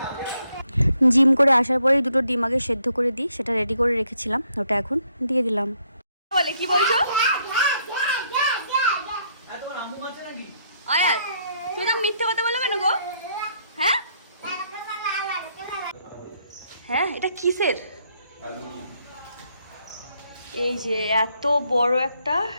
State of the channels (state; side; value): inverted; both; correlation -0.72